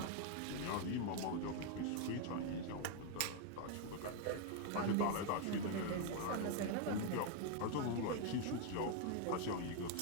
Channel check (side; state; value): both; different; correlation 0.00